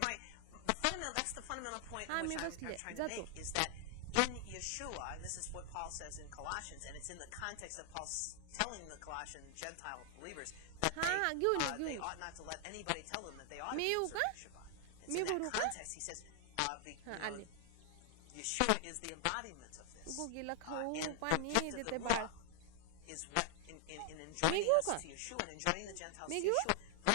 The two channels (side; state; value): both; different; correlation 0.00